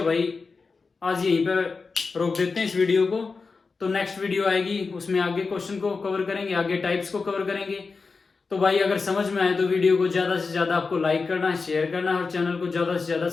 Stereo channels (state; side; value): quieter; right; 4.5 dB